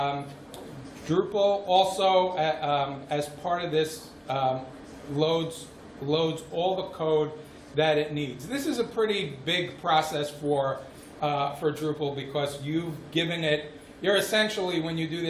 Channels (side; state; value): both; identical; correlation 1.00